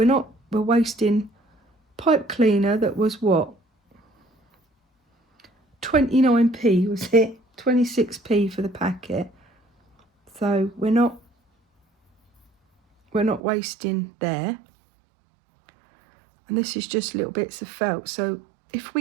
wasting pipe cleaner that was what? 29p was it? 26p for the packet. So we're not wasting there. And this is just little bits of felt. So if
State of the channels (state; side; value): drops out; left; at 13.4 s